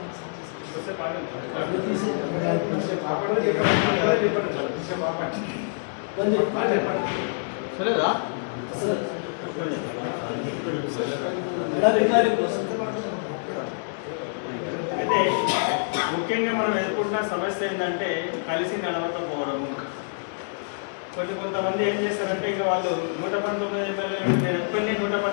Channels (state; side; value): silent; right; digital silence